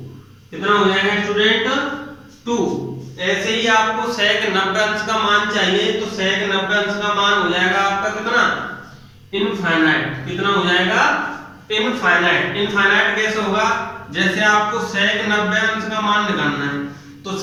कितना हो जाएगा स्टूडेंट, 2। ऐसे ही आपको sec 90 अंश का मान चाहिए, तो sec 90 अंश का मान हो जाएगा आपका कितना, इनफाइनाइट। कितना हो जाएगा, इनफाइनाइट। इनफाइनाइट कैसे होगा, जैसे आपको sec 90 अंश का मान निकालना है, तो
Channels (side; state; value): both; identical; correlation 1.00